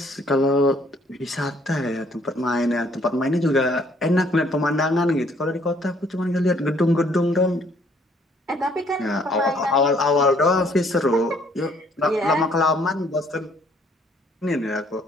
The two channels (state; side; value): normal; both; correlation 0.63